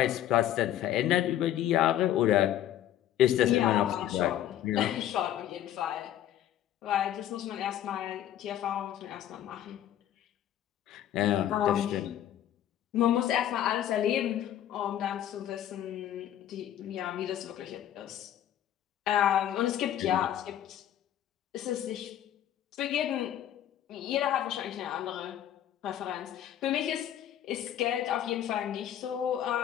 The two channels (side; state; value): right; quieter; 11.5 dB